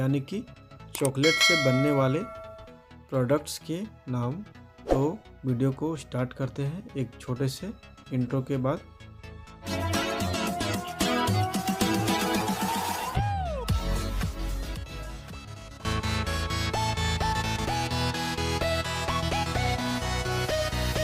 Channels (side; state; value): both; identical; correlation 1.00